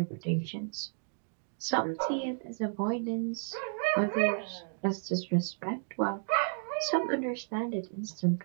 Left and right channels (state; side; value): silent; left; digital silence